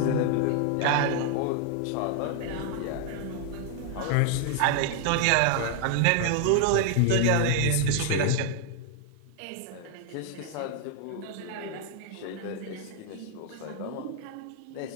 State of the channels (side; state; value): both; different; correlation 0.00